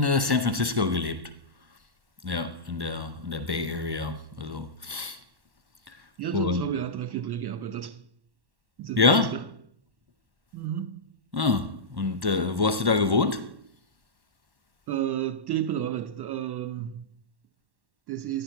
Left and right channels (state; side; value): late; left; 1.1 ms